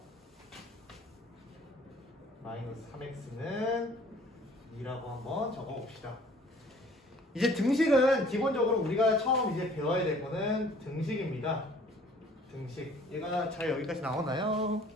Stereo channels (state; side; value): normal; both; correlation 0.54